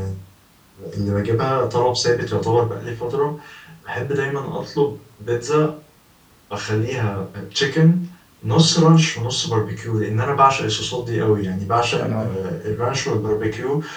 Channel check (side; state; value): both; identical; correlation 1.00